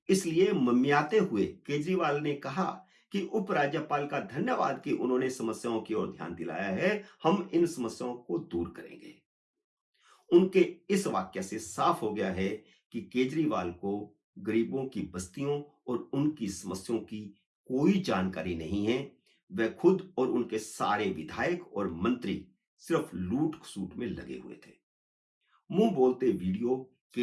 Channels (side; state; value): both; identical; correlation 1.00